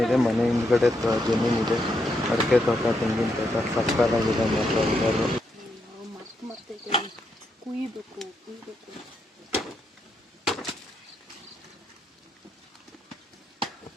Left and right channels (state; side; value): normal; both; correlation 0.80